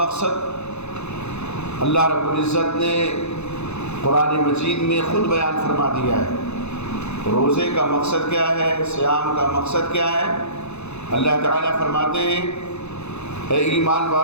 اللہ رب العزت نے قرآن مجید میں خود بیان فرما دیا ہے. روزے کا مقصد کیا ہے, صیام کا مقصد کیا ہے. اللہ تعالیٰ فرماتے ہیں اے ایمان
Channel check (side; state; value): right; late; 0.81 ms